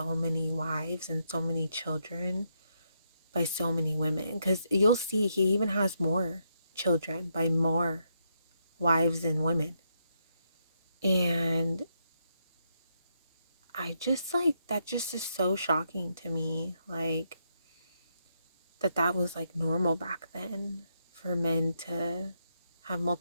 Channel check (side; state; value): both; inverted; correlation -0.79